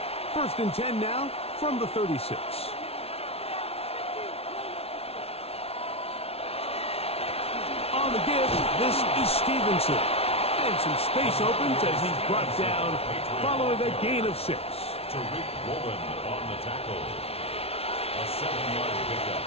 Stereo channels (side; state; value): right; late; 0.29 ms